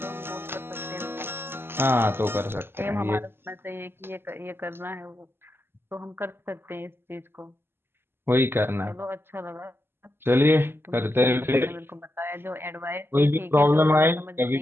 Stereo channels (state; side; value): late; left; 0.11 ms